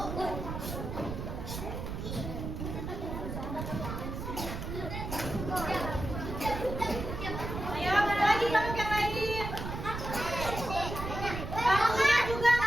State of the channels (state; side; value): noise; right; rumble, 6 dB below the sound